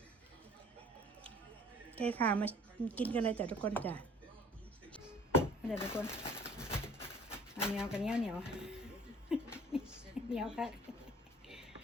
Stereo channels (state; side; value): normal; both; correlation 0.52